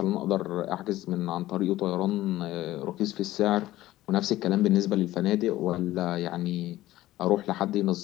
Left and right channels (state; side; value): quieter; right; 15.7 dB